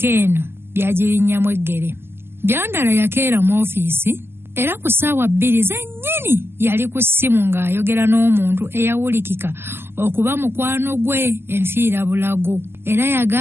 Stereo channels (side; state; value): left; late; 0.12 ms